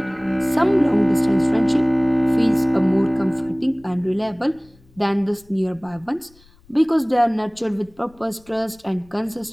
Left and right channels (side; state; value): left; noise; rumble, 29 dB below the sound